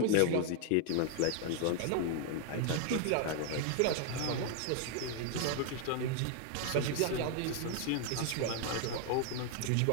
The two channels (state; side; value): different; both; correlation 0.00